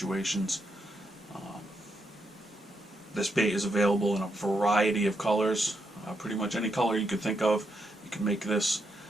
This bait is available in a variety of colors. Pretty much any color you could think of, you can make this.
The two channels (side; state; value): both; normal; correlation 0.80